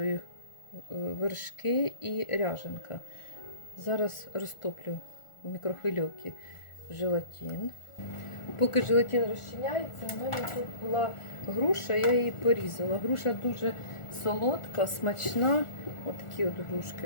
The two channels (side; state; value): right; late; 1.4 ms